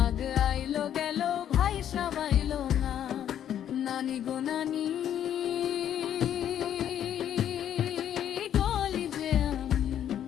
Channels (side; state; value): right; quieter; 10.2 dB